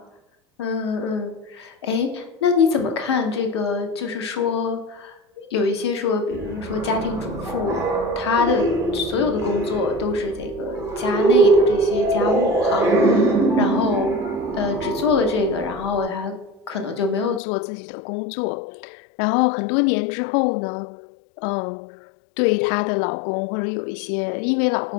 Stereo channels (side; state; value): right; drops out; at 17.4 s